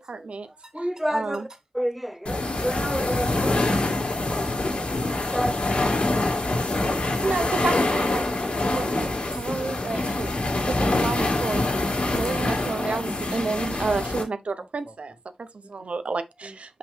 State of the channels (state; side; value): normal; both; correlation 0.85